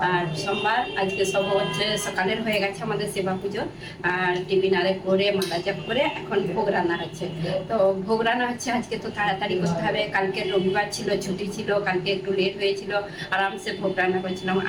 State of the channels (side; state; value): both; identical; correlation 1.00